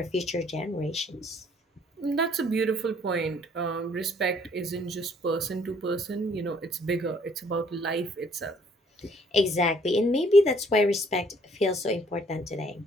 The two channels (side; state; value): both; normal; correlation 0.62